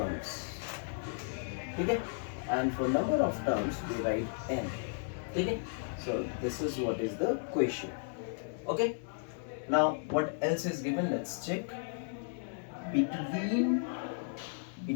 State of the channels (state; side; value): silent; right; 55 dB below the other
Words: Okay? And for number of terms we write n. Okay? So this is what is the question. Okay? Now what else is given? Let's check. Between